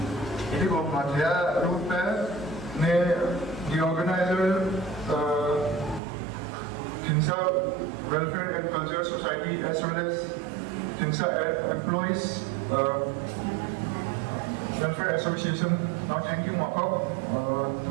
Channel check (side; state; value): left; drops out; at 6.0 s